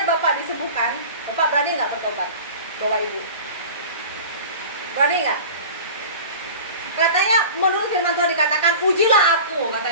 Bapak disembuhkan, Bapak berani nggak bertobat? Bawa ibu. Berani nggak? Katanya menurut firman Tuhan dikatakan, ujilah aku,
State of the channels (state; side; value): inverted; both; correlation -0.38